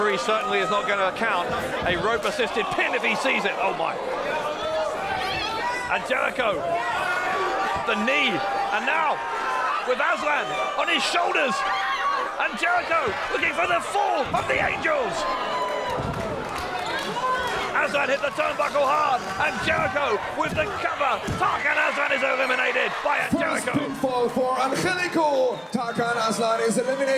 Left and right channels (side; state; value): both; identical; correlation 1.00